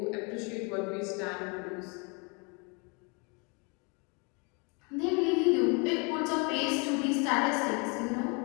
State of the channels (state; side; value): quieter; right; 32.5 dB